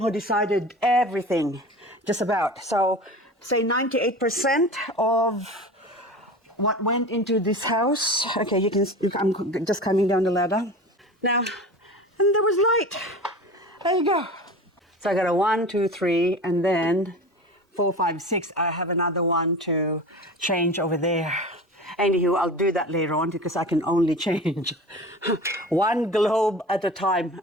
decided everything, just about. So, say 98% of what went into this house. Okay, you can. I'm just coming down the ladder now, and there was light. There you go. So I got a 1, 2, 3, and then 4, 5, 6. I have another one to change over there. Anywho, I'll do that later on because I can only change one globe at a time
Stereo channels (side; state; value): both; normal; correlation 0.34